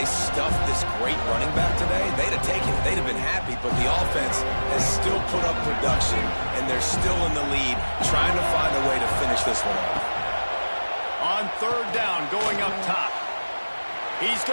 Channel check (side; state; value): both; inverted; correlation -1.00